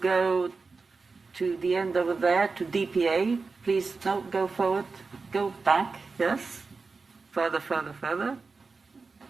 to the end over there, to DPA. Please, no, go forward, go back, yes. Further, further, further.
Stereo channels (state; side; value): quieter; left; 4.3 dB